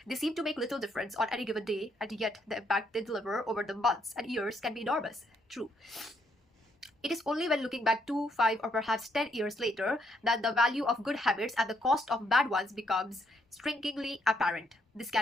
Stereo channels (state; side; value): normal; both; correlation 0.73